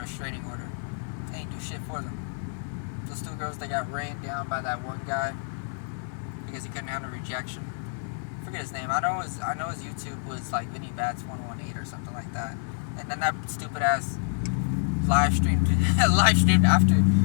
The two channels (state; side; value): silent; right; 60 dB below the other